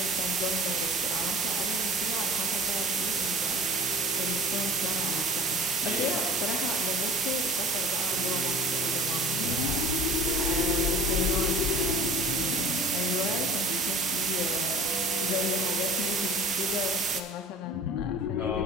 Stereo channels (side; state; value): both; normal; correlation 0.44